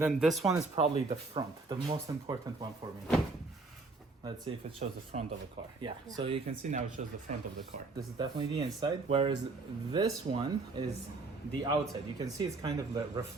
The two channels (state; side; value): quieter; left; 3.6 dB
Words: then this one is probably the front, the most important one for me. Let's see if it shows the front of the car. Yeah, so you can see now it shows the front of the car. This is definitely the inside, whereas this one is the outside. You can see it's kind of